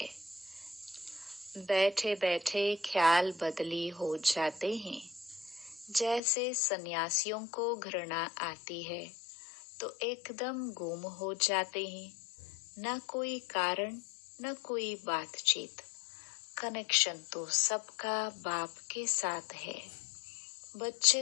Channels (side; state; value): right; drops out; at 6.2 s